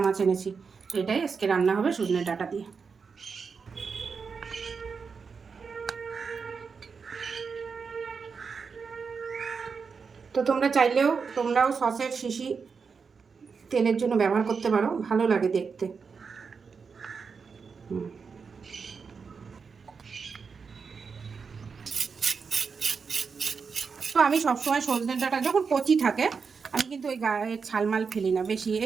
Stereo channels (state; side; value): quieter; left; 5.5 dB